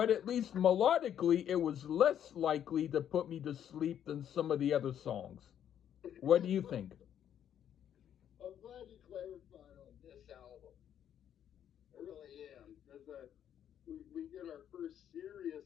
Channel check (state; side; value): quieter; right; 9.8 dB